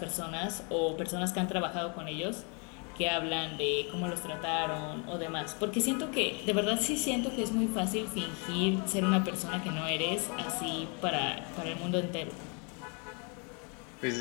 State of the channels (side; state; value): right; quieter; 35.1 dB